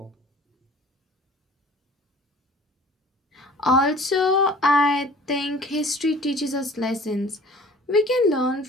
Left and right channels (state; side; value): normal; both; correlation 0.47